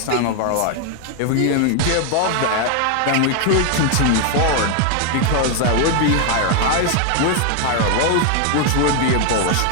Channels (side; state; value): both; different; correlation 0.01